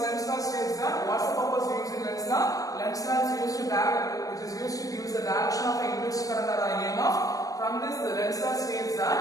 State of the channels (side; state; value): right; late; 0.17 ms